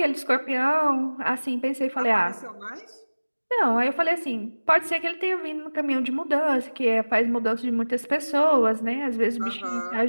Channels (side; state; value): both; inverted; correlation -1.00